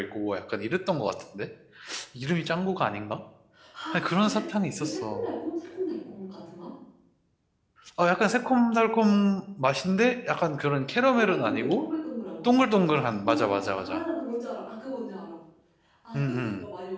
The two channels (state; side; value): identical; both; correlation 1.00